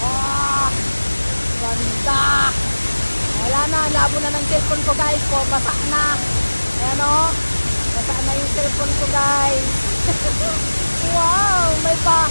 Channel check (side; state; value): both; inverted; correlation -1.00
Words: Ah! Ganda! Wala na, labo na ng cellphone ko guys po, basa na. Ayan o, basa na yung cellphone ko guys. Wow, may